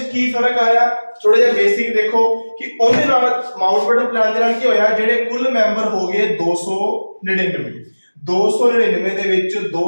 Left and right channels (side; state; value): both; inverted; correlation -1.00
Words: ਕੀ ਫਰਕ ਆਇਆ, ਥੋੜਾ ਜਿਹਾ ਬੇਸਿਕ ਦੇਖੋ ਕਿ ਉਹਦੇ ਨਾਲ ਮਾਊਂਟ ਬੈਟਨ ਪਲਾਨ ਦੇ ਨਾਲ ਕੀ ਹੋਇਆ, ਜਿਹੜੇ ਕੁੱਲ ਮੈਂਬਰ ਹੋ ਗਏ 299। 299 ਦੇ ਵਿੱਚ